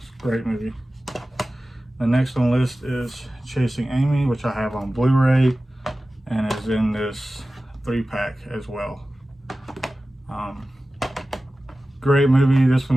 a great movie. The next on the list is Chasing Amy, which I have on Blu-ray and is in this 3-pack as well. Great movie. This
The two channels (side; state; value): both; normal; correlation 0.96